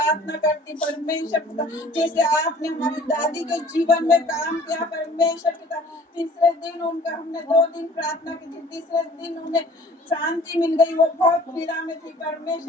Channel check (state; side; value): normal; both; correlation 0.51